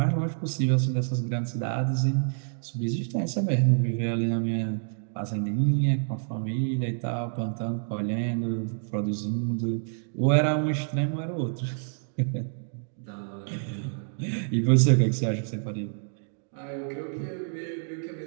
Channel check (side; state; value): left; silent; digital silence